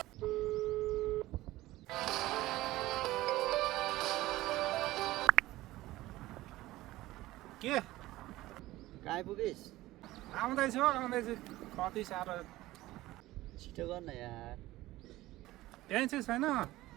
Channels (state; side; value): quieter; left; 17.2 dB